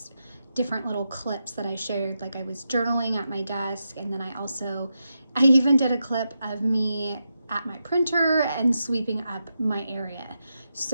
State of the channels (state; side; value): inverted; both; correlation -0.87